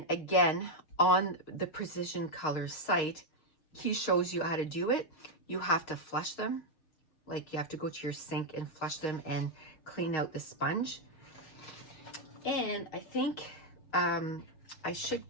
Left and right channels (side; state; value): right; late; 6.4 ms